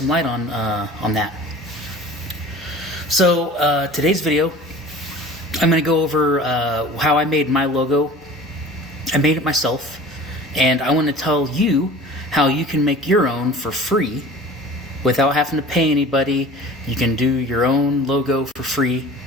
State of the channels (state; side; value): normal; both; correlation 0.42